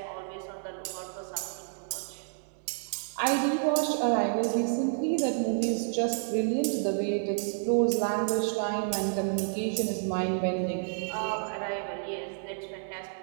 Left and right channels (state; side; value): silent; left; 58 dB below the other